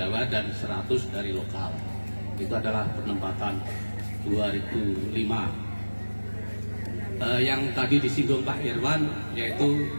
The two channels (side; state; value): both; inverted; correlation -1.00